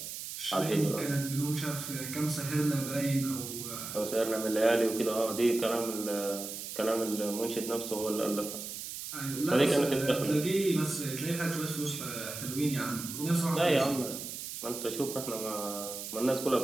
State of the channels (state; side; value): noise; right; hiss, 8 dB below the sound